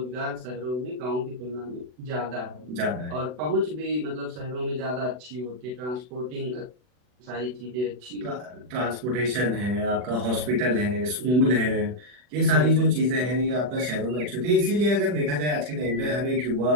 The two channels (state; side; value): late; left; 40 ms